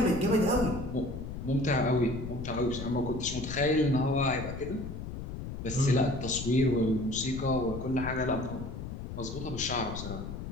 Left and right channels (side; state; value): left; noise; rumble, 8 dB below the sound